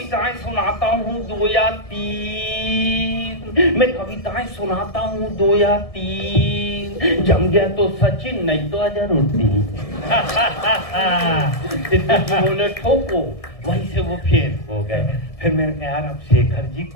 सुनाता हूँ 2 या 3, मैं कविताएं सुनाता हूँ 2 या 3, जम गया तो सचिन नहीं तो अजहरुद्दीन। सिद्धू जी बोले ठोको, वहीं से वो फेल हो गए। फिर मैंने कहा यार अब शेखर जी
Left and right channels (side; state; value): right; late; 1.7 ms